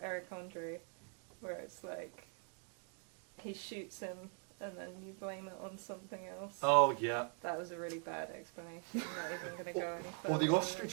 Eric Andre, where it's like, he shoots him and then you blame it on something else. Oh, yeah. That was a really bad explanation. I'm not even going to go any further. Or the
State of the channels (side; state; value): left; quieter; 38.6 dB